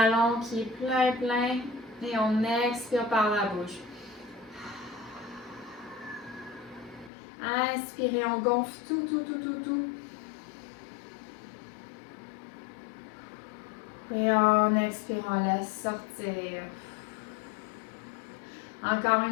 qui est plein. Et on expire par la bouche. Inspirez, on gonfle tout. Et en expirant, laisse sortir. Encore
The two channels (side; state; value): right; drops out; at 7.1 s